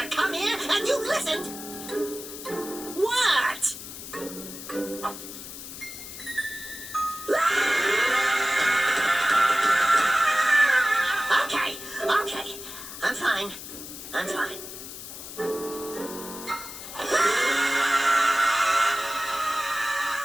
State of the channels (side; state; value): left; noise; hiss, 11 dB below the sound